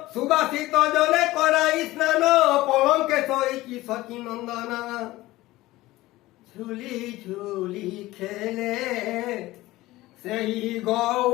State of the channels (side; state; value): right; quieter; 18.0 dB